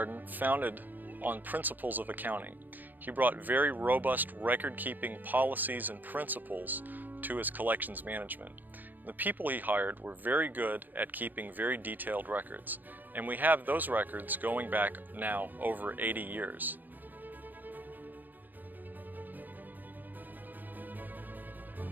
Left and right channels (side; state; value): left; late; 0.088 ms